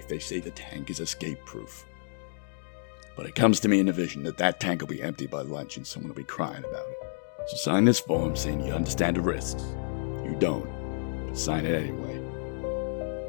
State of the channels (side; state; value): right; silent; digital silence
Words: they say the tank is escape-proof. But it comes to me in a vision that that tank will be empty by lunch and someone will be crying about it. So sign this form saying you understand the risks. You don't, but sign it anyway.